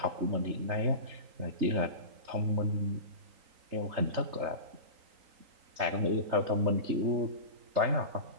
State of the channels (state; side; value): late; left; 3.8 ms